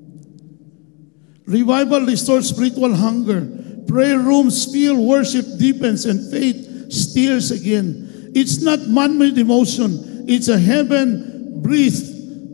Revival restores spiritual hunger. Prayer rooms fill, worship deepens, and faith stirs again. It's not man-made emotion. It's a heaven-breathed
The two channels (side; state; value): right; quieter; 32.9 dB